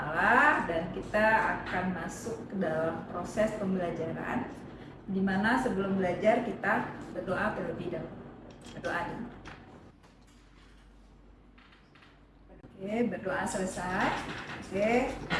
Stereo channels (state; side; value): identical; both; correlation 1.00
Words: dan kita akan masuk ke dalam proses pembelajaran, di mana sebelum belajar kita berdoa terlebih dahulu. Berdoa dulu. Oke, berdoa selesai. Oke,